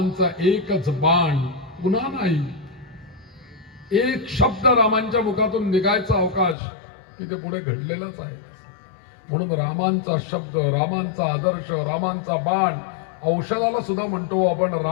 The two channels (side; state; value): right; drops out; at 6.6 s